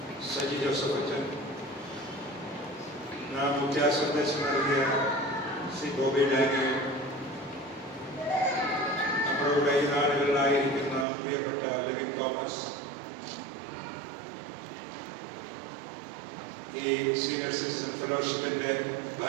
സജി ജോസഫ് അച്ഛൻ, നാം മുഖ്യ സന്ദേശം നൽകിയ ശ്രീ ഗോപി ഡാനിയൽ, നമ്മുടെ ഈ നാടുകളിലായിരിക്കുന്ന പ്രിയപ്പെട്ട ലിവിൻ തോമസ്, ഈ സീനിയർ സിറ്റിസൺ ഫെലോഷിപ്പിന്റെ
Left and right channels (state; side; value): drops out; left; at 11.1 s